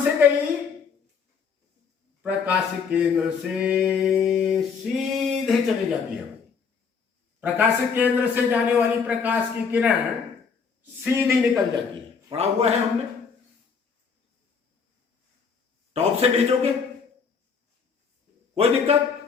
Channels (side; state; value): right; quieter; 5.9 dB